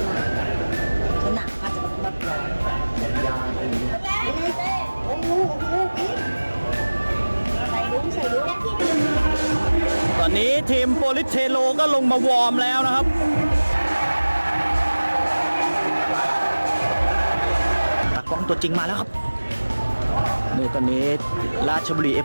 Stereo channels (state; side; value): inverted; both; correlation -1.00